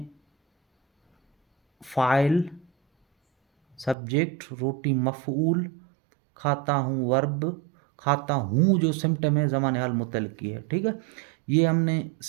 फ़ाइल, सब्जेक्ट, रोटी मफ़ऊल, खाता हूँ वर्ब, खाता हूँ जो सिम्पटम है ज़माने हाल मुतल्लिक़ की है। ठीक है, ये हमने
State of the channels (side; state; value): left; drops out; at 4.0 s